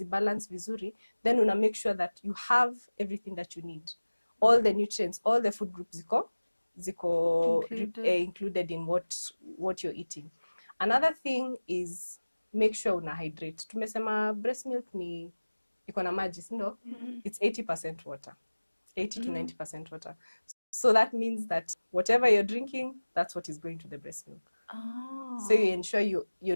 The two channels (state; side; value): inverted; both; correlation -1.00